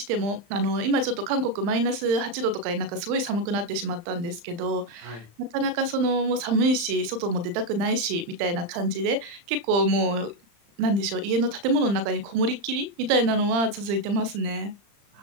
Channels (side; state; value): left; late; 35 ms